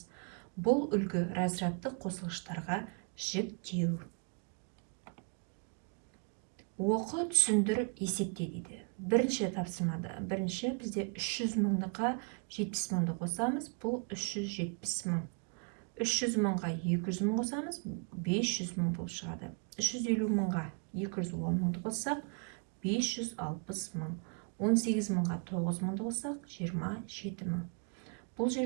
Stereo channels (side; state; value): left; quieter; 39.5 dB